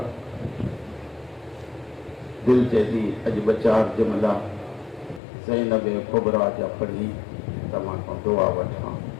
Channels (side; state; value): right; drops out; at 5.2 s